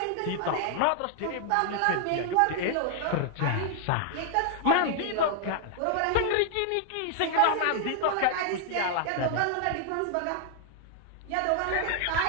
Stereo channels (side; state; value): both; different; correlation 0.00